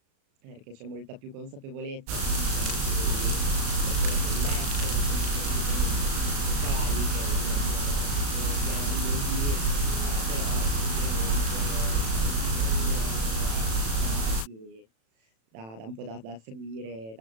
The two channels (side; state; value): left; late; 36 ms